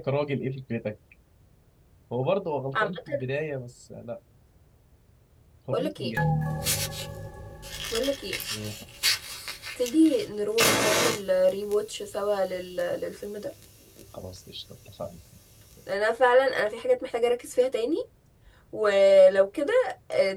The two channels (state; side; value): identical; both; correlation 1.00